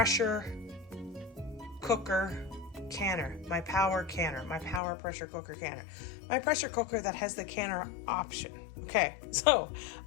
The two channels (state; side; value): drops out; right; at 4.8 s